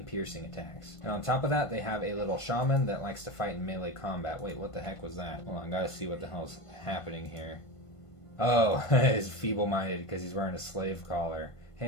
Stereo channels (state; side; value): late; right; 1.5 ms